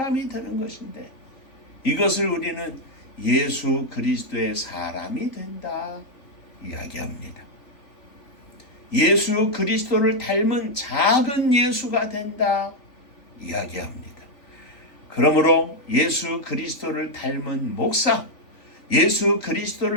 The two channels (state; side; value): late; right; 3.2 ms